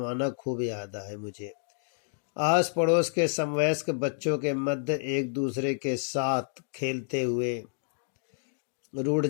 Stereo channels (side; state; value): right; silent; digital silence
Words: खूब याद है मुझे। आस पड़ोस के समवयस्क बच्चों के मध्य एक दूसरे के साथ खेलते हुए रूठ